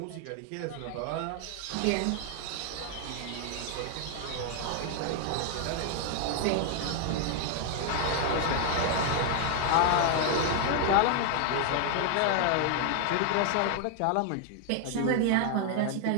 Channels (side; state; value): both; different; correlation 0.00